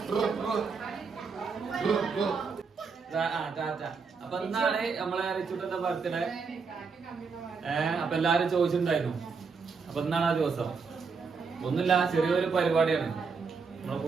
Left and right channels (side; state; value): left; quieter; 5.2 dB